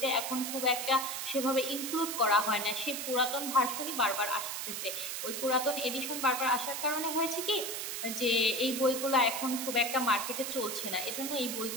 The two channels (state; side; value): noise; right; hiss, 4 dB below the sound